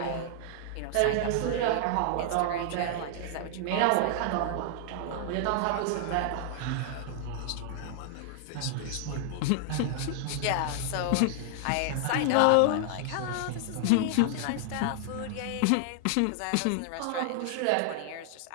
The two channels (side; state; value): both; different; correlation 0.00